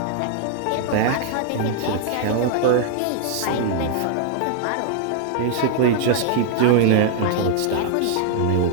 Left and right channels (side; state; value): both; different; correlation -0.01